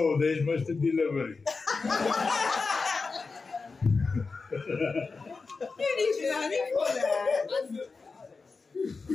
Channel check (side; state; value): right; quieter; 4.3 dB